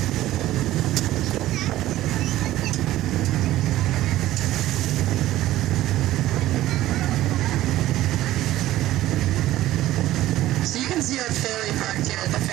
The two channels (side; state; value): left; quieter; 15.0 dB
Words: See our ferry parked here at the